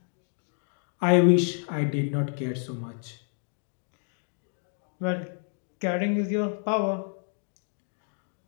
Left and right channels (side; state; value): right; silent; 58 dB below the other